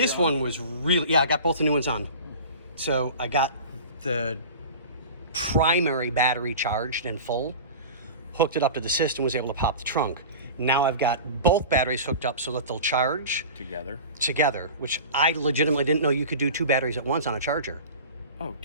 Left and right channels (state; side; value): inverted; both; correlation -0.36